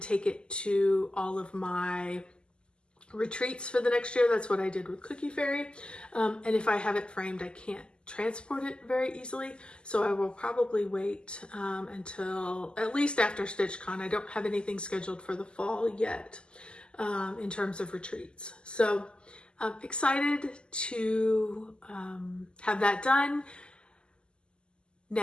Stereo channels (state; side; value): late; right; 0.049 ms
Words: it to all of my retreats for the next year. That's what I did with Cookie Fairy. And if I have it framed, I can't transport it very easily. So I will probably wait until at least after StitchCon. I don't have anything scheduled for the fall yet in terms of retreats. So I'm excited to have that done.